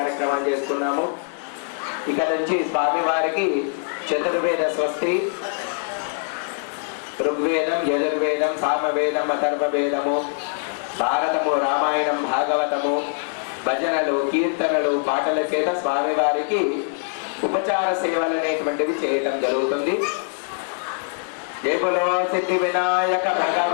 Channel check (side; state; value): right; silent; 57 dB below the other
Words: చేసుకున్నాము. ఇక నుంచి స్వామివారికి చతుర్వేద స్వస్తి, ఋగ్వేదం, యజుర్వేదం, సామవేదం, అథర్వవేదము, భారతము, రామాయణం, భాగవతము, భజనలు, కీర్తనలు, పాటల చేత స్వామివారికి ఉపచార సేవలు అనేటువంటివి చేయటం జరుగుతుంది. జై బోలో సిద్ధి వినాయక